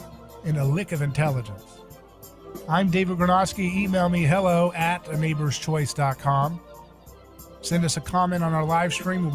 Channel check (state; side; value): identical; both; correlation 1.00